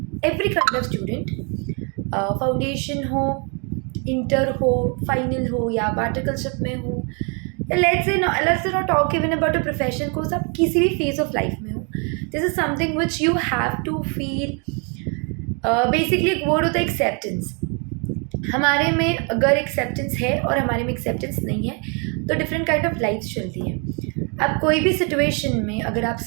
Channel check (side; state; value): left; quieter; 35.6 dB